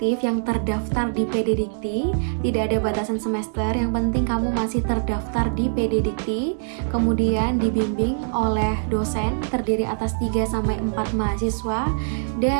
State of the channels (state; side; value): silent; left; digital silence